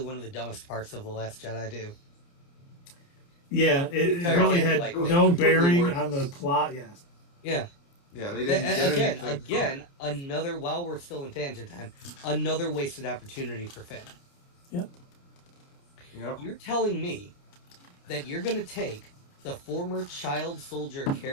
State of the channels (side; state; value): right; late; 29 ms